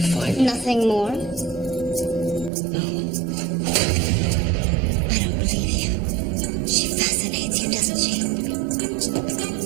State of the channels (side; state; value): left; drops out; at 2.5 s